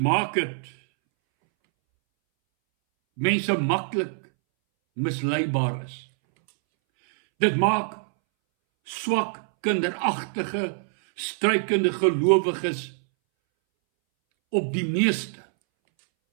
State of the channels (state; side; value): silent; left; 62 dB below the other